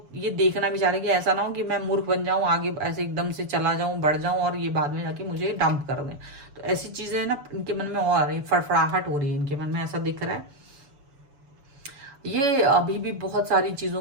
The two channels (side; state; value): left; late; 6.9 ms